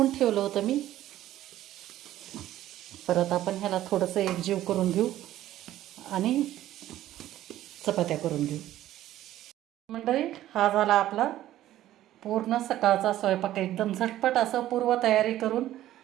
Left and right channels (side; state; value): left; quieter; 13.6 dB